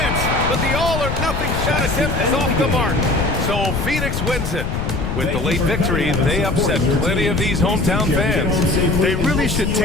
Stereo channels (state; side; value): noise; left; rumble, 2 dB below the sound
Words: but the all-or-nothing shot attempt is off the mark. So Phoenix wins it. With the late victory, they upset plenty of these hometown fans. They really should